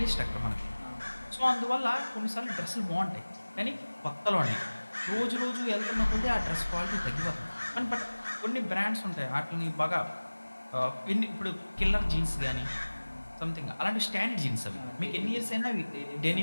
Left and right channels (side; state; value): both; inverted; correlation -1.00